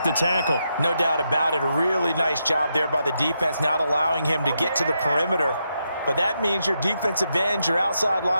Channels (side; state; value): both; inverted; correlation -0.83